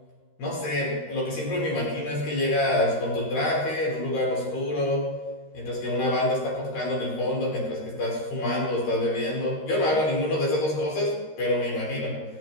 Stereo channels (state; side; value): late; right; 13 ms